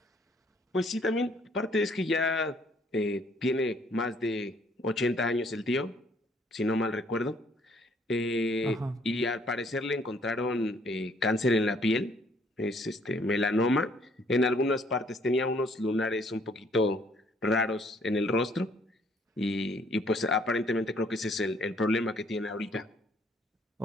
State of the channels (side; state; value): both; normal; correlation 0.63